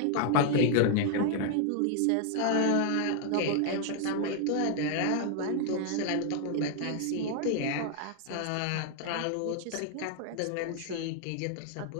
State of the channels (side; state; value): both; different; correlation 0.00